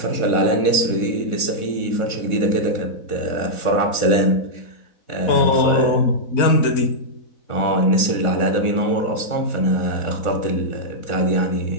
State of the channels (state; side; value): late; right; 4.1 ms